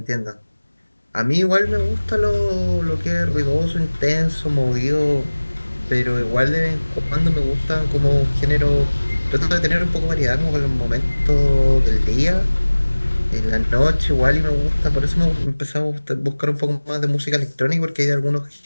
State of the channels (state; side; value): inverted; both; correlation -1.00